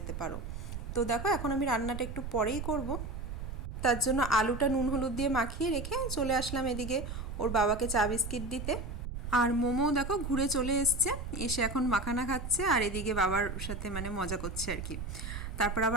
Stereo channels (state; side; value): noise; right; rumble, 7 dB below the sound